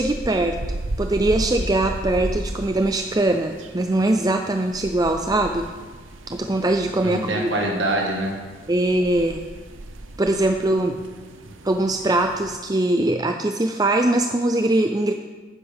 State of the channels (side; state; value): both; normal; correlation 0.68